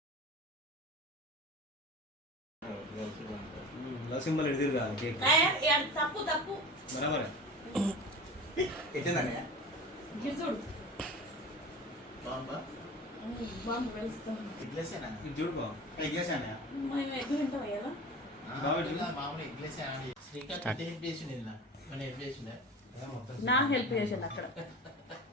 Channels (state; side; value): normal; both; correlation 0.35